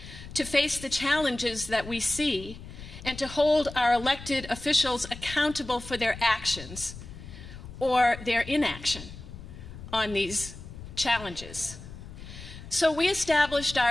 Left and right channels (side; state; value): left; noise; rumble, 14 dB below the sound